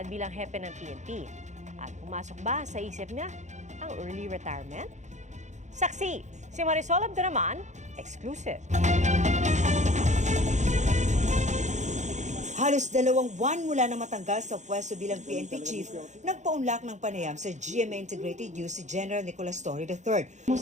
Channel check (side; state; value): left; late; 0.34 ms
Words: bilang hepe ng PNP. At pumasok ba sa isip niya ang early retirement? Saksi, si Marisol Abduraman, exclusive. Halos 2 buwan mula na matanggal sa pwesto bilang PNP Chief, nagpaunlak ng panayam sa GMA Integrated News si General Nicolas Torre III.